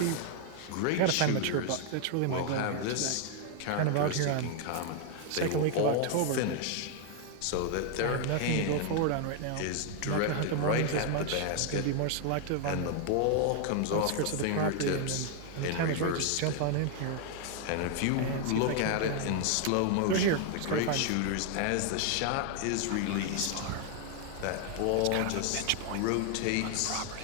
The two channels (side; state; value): both; different; correlation 0.00